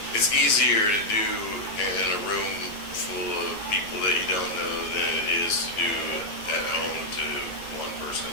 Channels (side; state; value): right; late; 9.7 ms